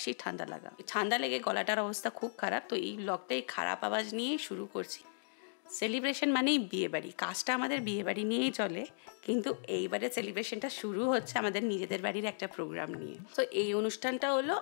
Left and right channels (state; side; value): silent; right; digital silence